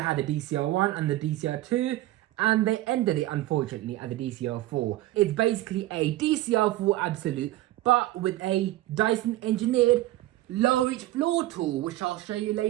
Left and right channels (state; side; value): quieter; left; 16.0 dB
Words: had the DC01 and the DC02, and they ended it unfortunately at the DC04. It's basically a DC04 Absolute, but with a Dyson engineered low reach floor tool, which I'll show you